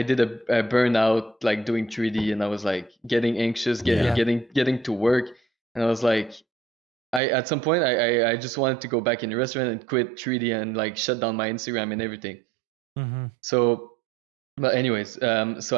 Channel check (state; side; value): drops out; left; at 7.2 s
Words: a burnout, like doing 3D, and I was like getting anxious, getting to work. And I was like, at some point, I just wanted to go back in the restaurant and quit 3D and like shut down my Instagram and everything. So, but anyways, so